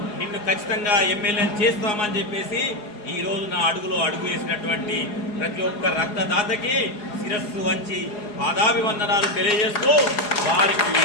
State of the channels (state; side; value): late; right; 4.8 ms